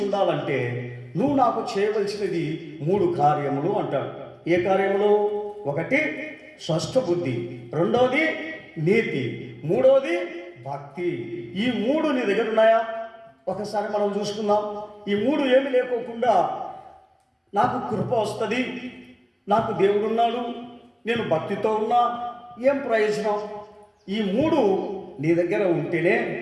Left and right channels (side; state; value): both; identical; correlation 1.00